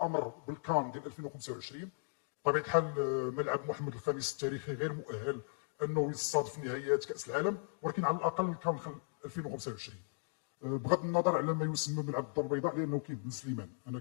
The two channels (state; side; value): silent; right; digital silence